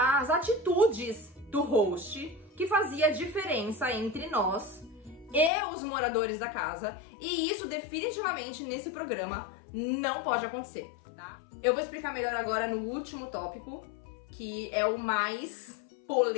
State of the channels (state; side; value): drops out; right; at 5.5 s